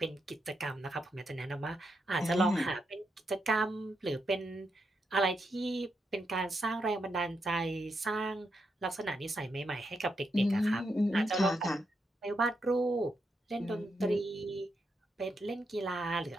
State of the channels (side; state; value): both; normal; correlation 0.82